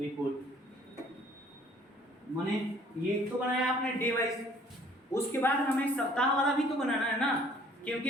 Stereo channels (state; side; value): normal; both; correlation 0.57